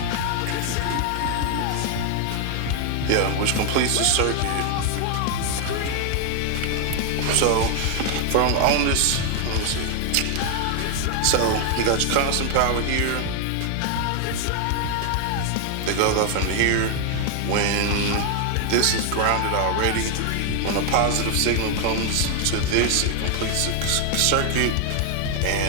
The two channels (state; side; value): different; both; correlation 0.00